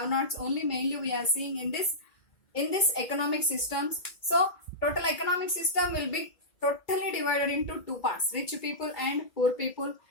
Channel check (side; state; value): right; late; 2.2 ms